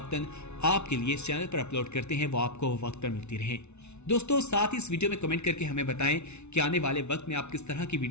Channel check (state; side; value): late; right; 0.81 ms